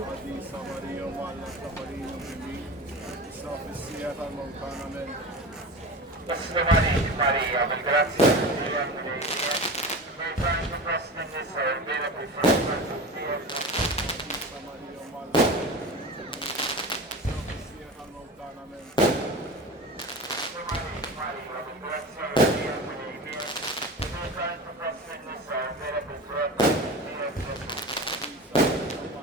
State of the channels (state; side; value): normal; both; correlation 0.31